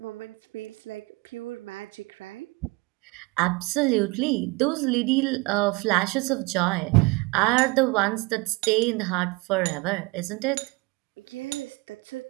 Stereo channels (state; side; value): quieter; left; 26.0 dB